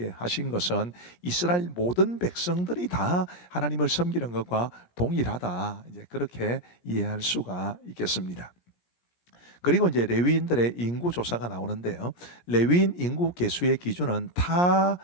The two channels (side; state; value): right; late; 17 ms